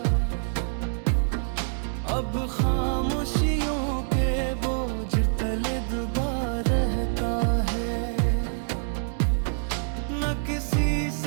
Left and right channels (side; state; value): left; silent; digital silence